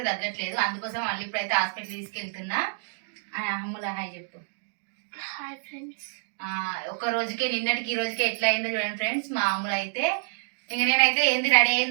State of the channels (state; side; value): silent; left; digital silence